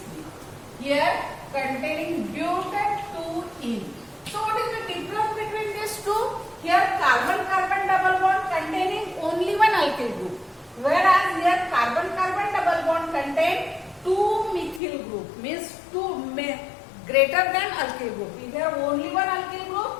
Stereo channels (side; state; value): right; drops out; at 14.8 s